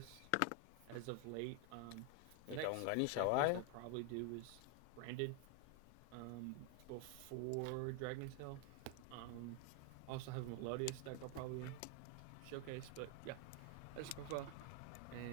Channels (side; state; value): both; different; correlation 0.01